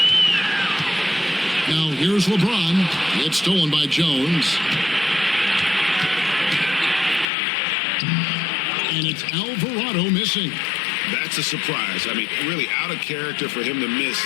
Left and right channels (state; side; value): drops out; right; at 7.2 s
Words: Now here's LeBron. It's stolen by Jones. And it's Alvarado missing. That's a surprise. I mean, really out of character for him to miss